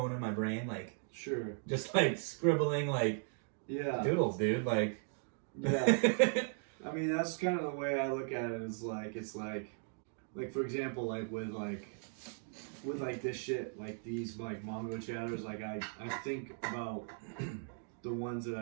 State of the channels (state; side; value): silent; left; 53 dB below the other